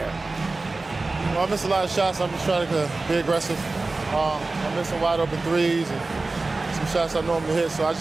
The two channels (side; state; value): left; quieter; 3.4 dB